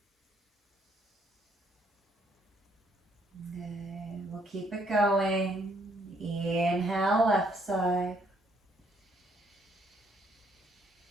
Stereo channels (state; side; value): normal; both; correlation 0.68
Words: Good. We'll keep it going. Inhale, left side.